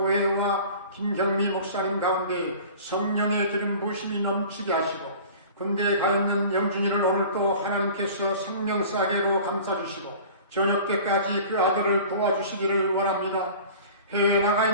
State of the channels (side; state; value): both; inverted; correlation -0.42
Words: 김경미 목사님 가운데 성령의 기름 부으심이 넘치게 하시고 군대에 가 있는 영준이를 오늘 또 하나님께서 생명사계로 감싸주시고 저녁 때까지 그 아들을 도와주시기를 원합니다. 해외에 나가